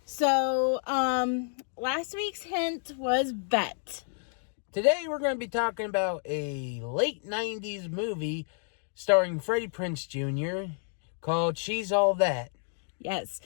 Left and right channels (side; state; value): right; silent; digital silence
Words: So, last week's hint was bet. Today we're going to be talking about a late 90s movie starring Freddie Prinze Jr. called She's All That. Yes.